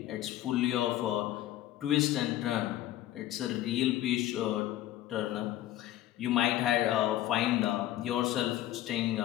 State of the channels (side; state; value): right; quieter; 13.8 dB